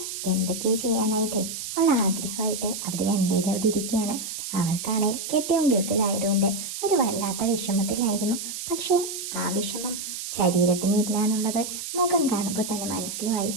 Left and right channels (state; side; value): noise; right; hiss, 7 dB below the sound